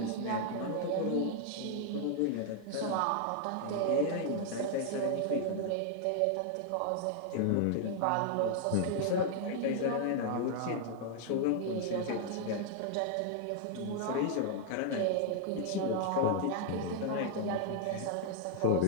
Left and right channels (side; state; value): both; different; correlation 0.00